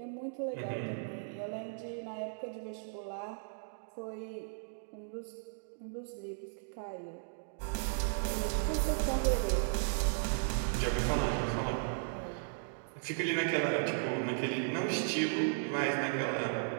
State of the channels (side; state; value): left; silent; digital silence